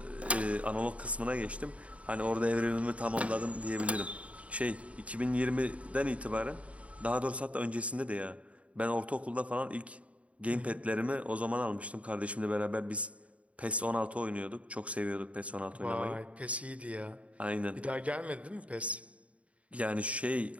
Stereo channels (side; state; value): left; late; 0.065 ms